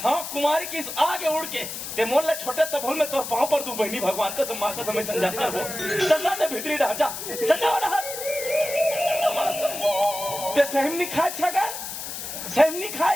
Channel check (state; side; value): noise; left; hiss, 7 dB below the sound